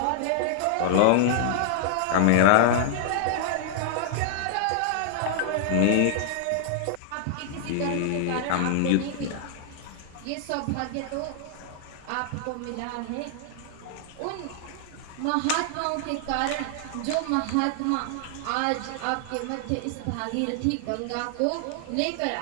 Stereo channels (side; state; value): both; different; correlation -0.01